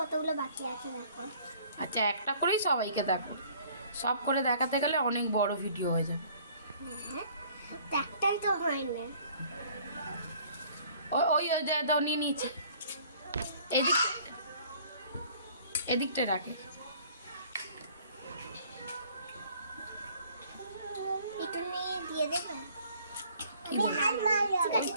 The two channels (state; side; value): inverted; both; correlation -0.55